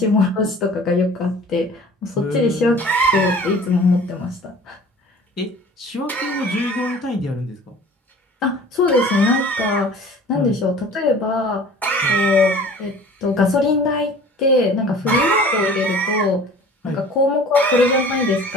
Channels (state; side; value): normal; both; correlation 0.45